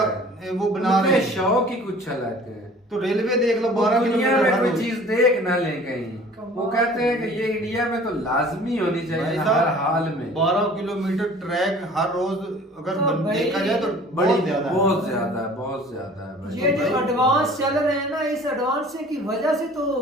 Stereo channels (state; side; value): normal; both; correlation 0.48